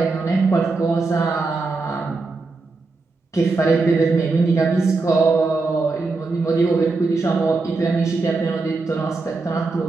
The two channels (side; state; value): left; quieter; 3.8 dB